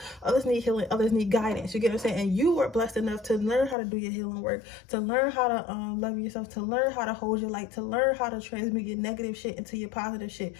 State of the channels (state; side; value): drops out; right; at 3.8 s